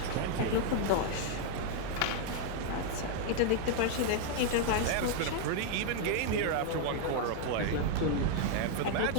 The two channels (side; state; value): both; different; correlation 0.00